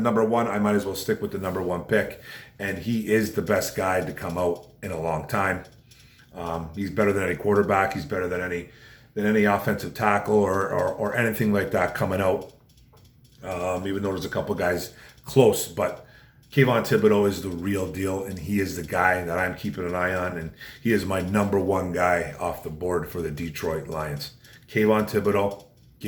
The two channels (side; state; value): both; identical; correlation 1.00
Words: 1. I might as well stick with the number 1 pick. And he is the best guy to come out in a long time. He's better than any quarterback. He's better than any offensive tackle or anything like that coming out. Even though there's a couple guys close. But Kayvon Thibodeaux is the real deal. And he is the guy that I'm keeping an eye on. And he is my number 1 guy off the board for the Detroit Lions. Kayvon Thibodeaux,